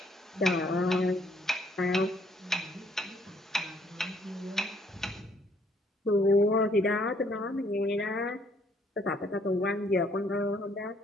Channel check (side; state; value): both; normal; correlation 0.66